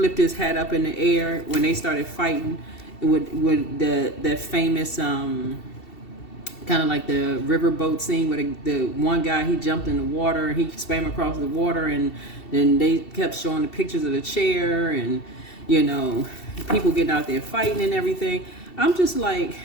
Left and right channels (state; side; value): late; right; 2.7 ms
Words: his hat up in the air when they started fighting with that famous kind of like the riverboat scene where the one guy, he jumped in the water and he swam across the water, and then they kept showing the pictures of the chair and, you know, people getting out there fighting and everything. I'm just like,